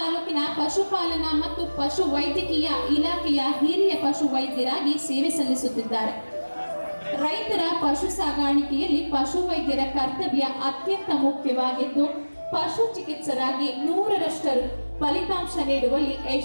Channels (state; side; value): inverted; both; correlation -1.00